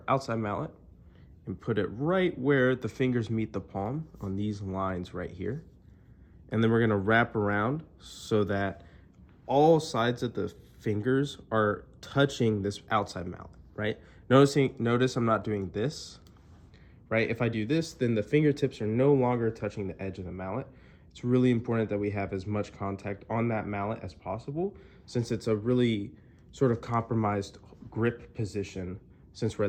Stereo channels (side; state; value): both; identical; correlation 1.00